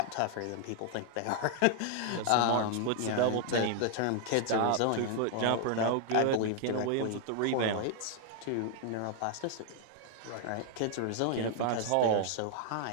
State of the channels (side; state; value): both; different; correlation 0.00